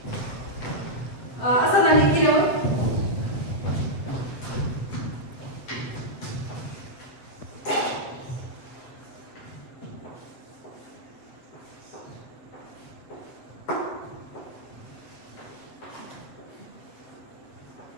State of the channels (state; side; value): late; right; 7.9 ms